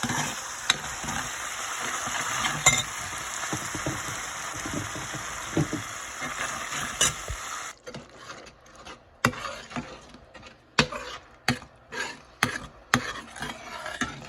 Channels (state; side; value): identical; both; correlation 1.00